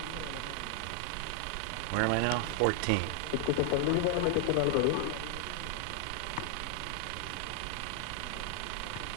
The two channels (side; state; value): both; different; correlation 0.00